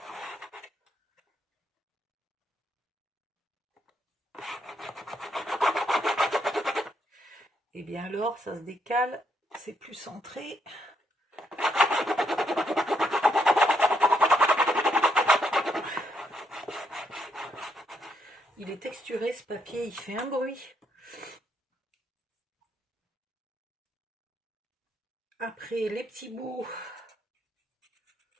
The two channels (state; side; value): normal; both; correlation 0.75